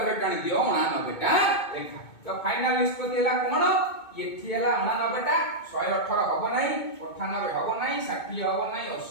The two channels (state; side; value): late; right; 2.2 ms